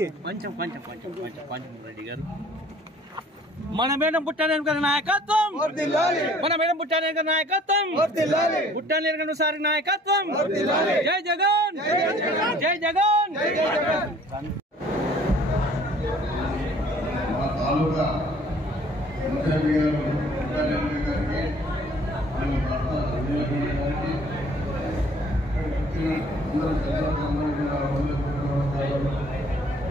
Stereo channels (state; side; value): normal; both; correlation 0.55